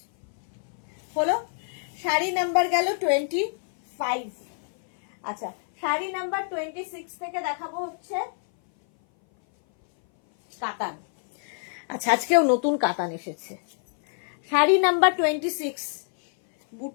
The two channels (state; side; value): silent; right; 58 dB below the other